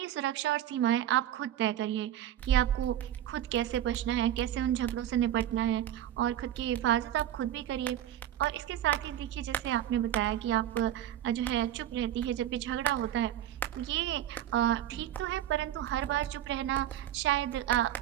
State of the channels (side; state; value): left; quieter; 11.7 dB